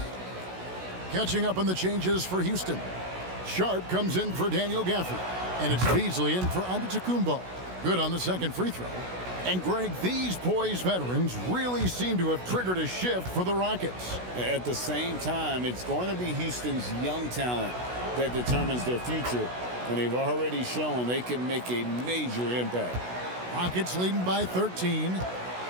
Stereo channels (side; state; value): left; late; 16 ms